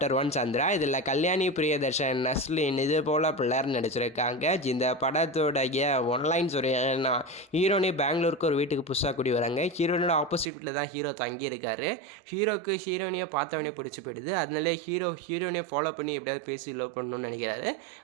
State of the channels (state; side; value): drops out; left; at 10.5 s